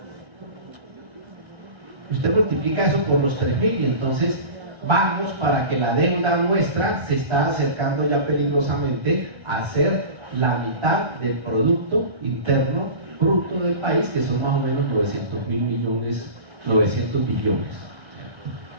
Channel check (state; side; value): late; left; 1.3 ms